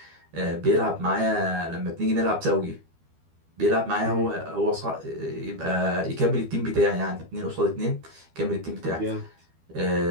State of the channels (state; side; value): late; left; 12 ms